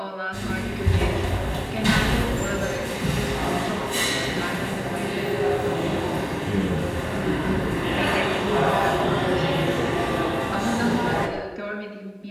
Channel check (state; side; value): identical; both; correlation 1.00